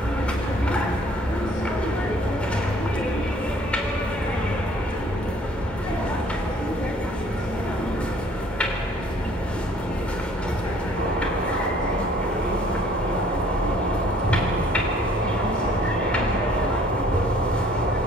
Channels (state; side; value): normal; both; correlation 0.57